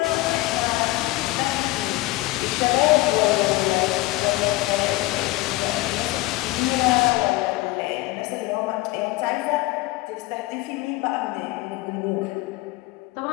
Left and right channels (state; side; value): quieter; right; 19.4 dB